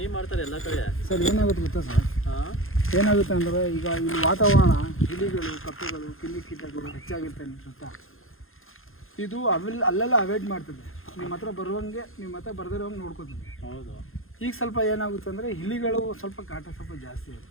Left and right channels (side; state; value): right; late; 0.60 ms